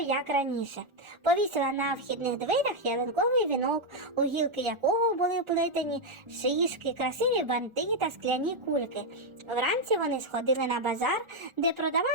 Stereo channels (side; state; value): left; late; 1.4 ms